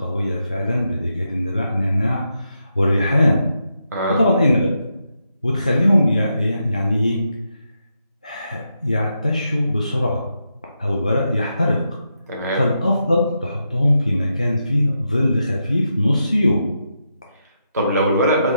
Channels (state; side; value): inverted; both; correlation -0.84